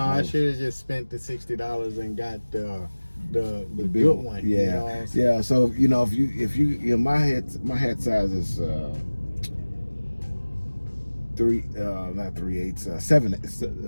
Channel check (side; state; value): both; inverted; correlation -1.00